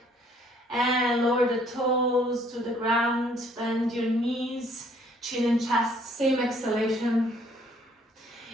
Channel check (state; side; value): normal; both; correlation 0.62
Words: And lower the toes to the ground, bend your knees, chin and chest. Same exhalation.